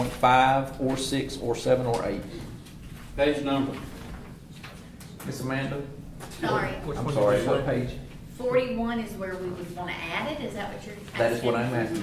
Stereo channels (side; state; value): both; identical; correlation 1.00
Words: or 6, or 7, or 8. Page number. Miss Amanda? Sorry, I'm sorry, what page? 41 is where we would want to add it, is that what you're asking? That is what I'm asking,